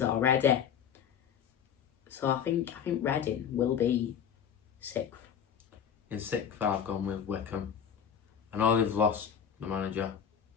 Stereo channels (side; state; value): right; quieter; 8.2 dB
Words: already. So I think Reading will be 6th. In 6th, I've gone with Wickham. I know they've lost the manager.